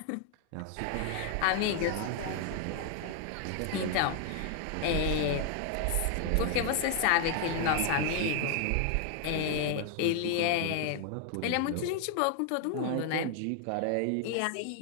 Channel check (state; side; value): different; both; correlation 0.00